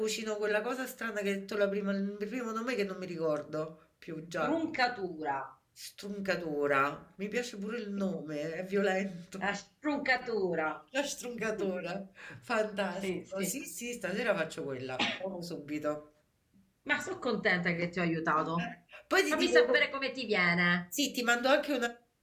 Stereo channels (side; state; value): both; identical; correlation 1.00